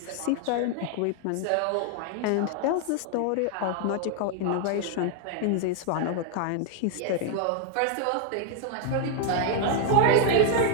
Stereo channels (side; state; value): both; different; correlation 0.00